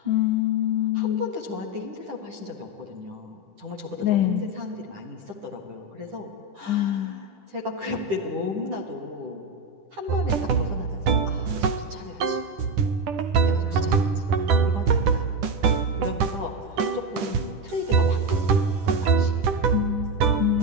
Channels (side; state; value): left; late; 10 ms